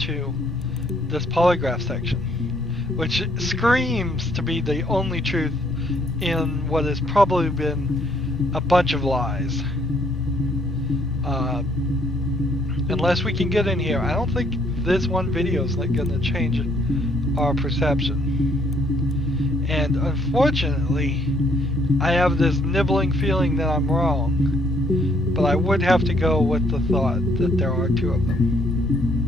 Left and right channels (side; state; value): both; normal; correlation 0.67